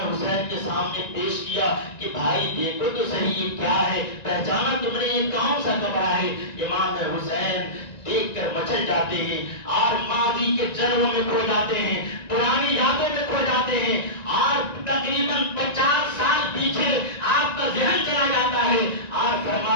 کے سامنے پیش کیا کہ بھائی دیکھو تو صحیح یہ کیا ہے، پہچانا تم نے یہ کون سا کپڑا ہے؟ امام حسین دیکھ کر مچل جاتے ہیں اور ماضی کے جلووں میں کھو جاتے ہیں، پرانی یادوں میں کھو جاتے ہیں، اور تقریباً 50 سال پیچھے آپ کا ذہن چلا جاتا ہے اور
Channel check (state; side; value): late; right; 1.9 ms